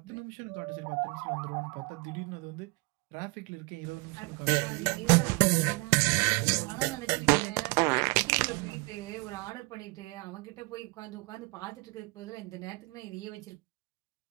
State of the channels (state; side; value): quieter; left; 26.6 dB